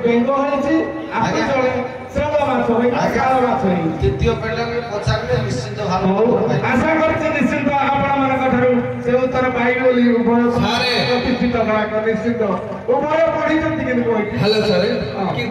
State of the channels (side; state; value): both; identical; correlation 1.00